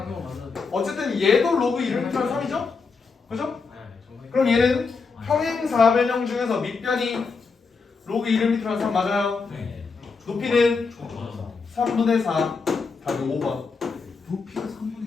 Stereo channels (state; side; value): quieter; right; 4.8 dB